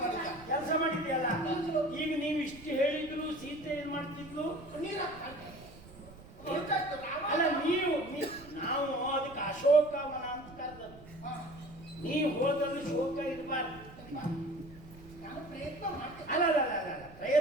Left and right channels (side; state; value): right; noise; rumble, 19 dB below the sound